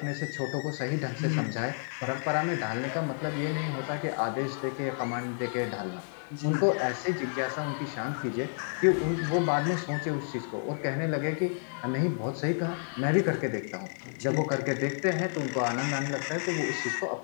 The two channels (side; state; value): right; silent; 57 dB below the other